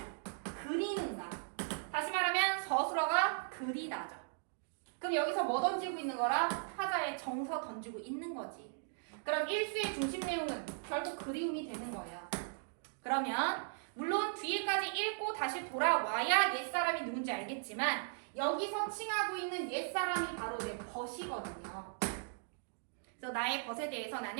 그리는가. 다시 말하면 서술어가 그리다죠. 그럼 여기서 뭐 던지고 있는 거라? 타자에 정서 던지고 있는 거지. 그럼 1수의 중심 내용은 결국 그리움이 되는 거예요. 그러면 물론 뒤에까지 읽고 다시 돌아와야 옛사람이 누군지 알겠지만 여기서 칭하고 있는 옛사람이 바로 내 벗이거든요. 그래서 나의 벗에 대해서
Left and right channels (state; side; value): silent; left; digital silence